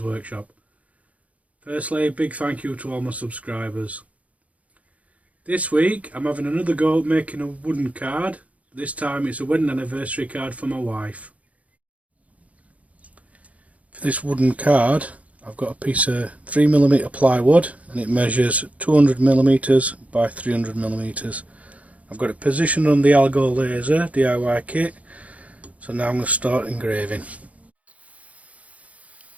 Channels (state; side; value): late; left; 0.068 ms